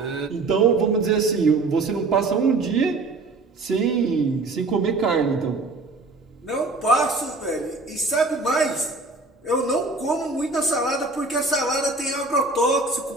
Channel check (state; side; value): quieter; left; 3.4 dB